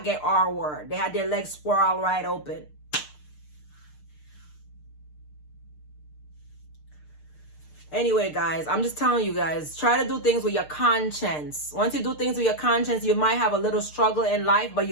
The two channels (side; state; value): right; late; 6.6 ms